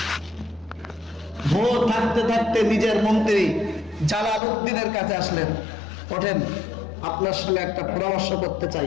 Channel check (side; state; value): right; drops out; at 4.4 s